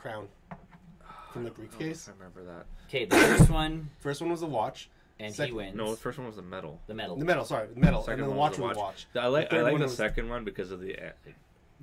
from the briefcase. I remember that. Okay, the first one, First one was a watch. and Second- he wins. No, the first one was the medal. The medal. The medal, sorry. The medal. Second And then the one watch was was the a watch. I like third one the was- second one because of the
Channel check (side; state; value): both; identical; correlation 1.00